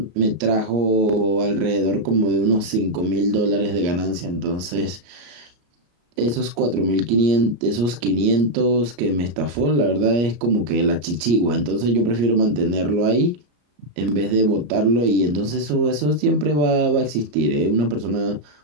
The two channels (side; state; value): left; late; 34 ms